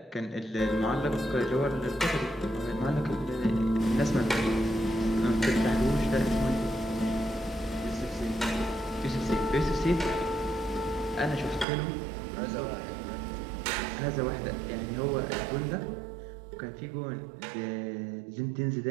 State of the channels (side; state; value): left; drops out; at 11.7 s